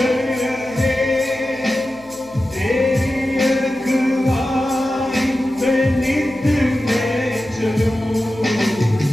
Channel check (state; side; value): noise; left; hum, 27 dB below the sound